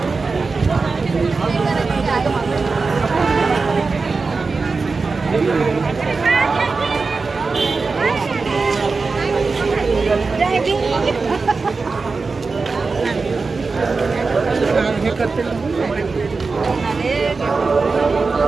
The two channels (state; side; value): quieter; left; 4.3 dB